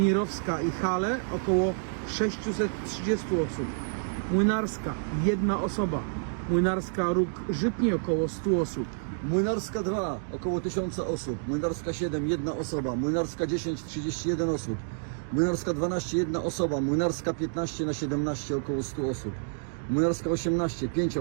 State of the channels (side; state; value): left; silent; digital silence